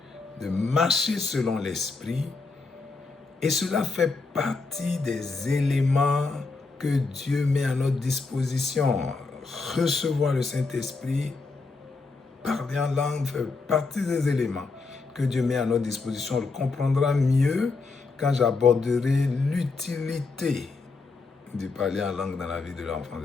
De marcher selon l'Esprit. Et cela fait partie des éléments que Dieu met à notre disposition. Recevoir le Saint-Esprit, parler en langue, fait partie des éléments que Dieu met à notre disposition. On le comprendra mieux quand j'aborderai l'utilité de parler en langue dans la vie de l'enfant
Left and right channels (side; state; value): right; quieter; 4.1 dB